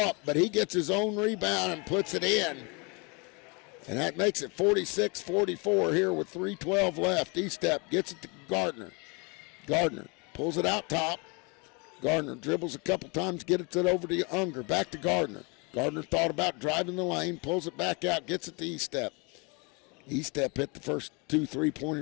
but he gets his own rebound and puts it in. And that makes it 46-44 here with 3:12 left. E-step gets it to Gardner. Gardner pulls it out top. Gardner dribbles a couple times, gets it over to Unger. Back to Gardner. Gardner thought about driving the lane, pulls it back out, gets it to E-step. E-step hit the first 2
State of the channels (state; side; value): quieter; right; 30.9 dB